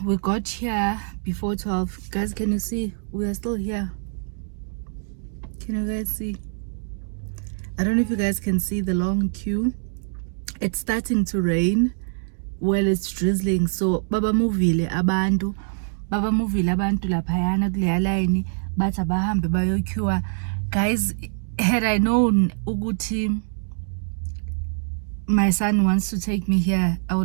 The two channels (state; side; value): silent; left; digital silence